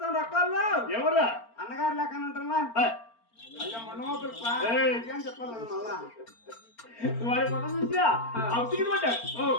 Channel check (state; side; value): late; right; 4.4 ms